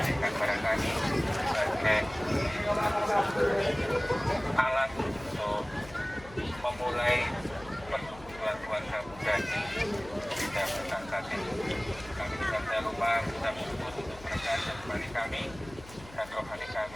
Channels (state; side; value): noise; left; hum, 19 dB below the sound